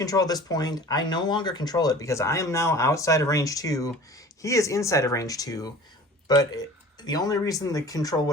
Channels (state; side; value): normal; both; correlation 0.43